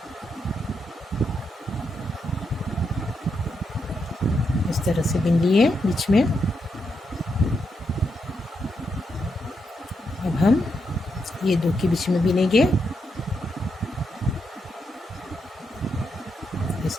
इस तरह से बिन लिए बीच में। अब हम ये दो के बीच में बिनेंगे इस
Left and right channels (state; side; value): normal; both; correlation 0.82